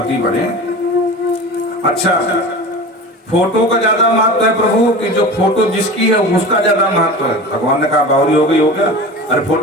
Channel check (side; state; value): both; normal; correlation 0.33